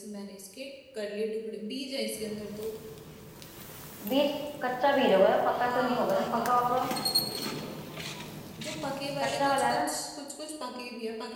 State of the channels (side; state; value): both; identical; correlation 1.00